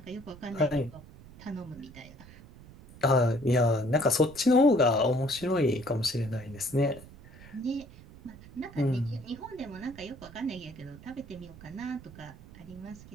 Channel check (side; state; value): right; noise; rumble, 19 dB below the sound